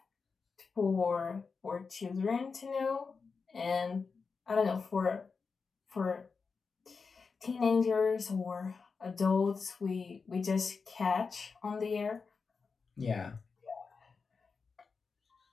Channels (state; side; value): quieter; right; 5.0 dB